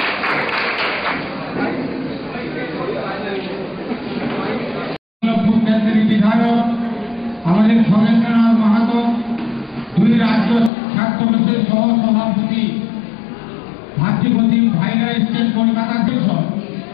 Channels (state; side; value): drops out; right; at 10.7 s